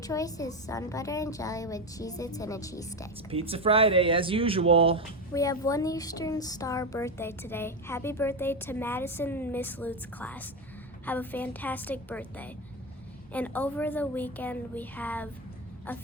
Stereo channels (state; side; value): normal; both; correlation 0.13